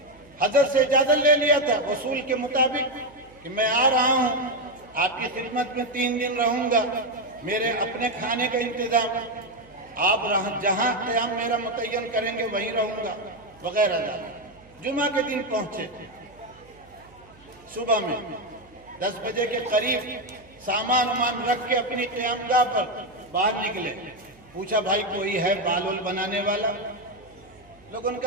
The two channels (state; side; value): noise; right; hum, 26 dB below the sound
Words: حضرت سے اجازت لے لیا تھا وصول کے مطابق کہ میں آ رہا ہوں، آپ کی خدمت میں 3 دن رہوں گا، میرے اپنے کھانے کا انتظام، آپ جہاں قیام میرا متعین کریں گے وہیں رہوں گا وغیرہ۔ جمعہ کے دن پہنچے، صبح میں 10 بجے کے قریب سامان رکھ کے اپنی قیام گاہ پر باہر نکلے۔ پوچھا بھائی کوئی ہے بال بنانے والا؟ لوگوں نے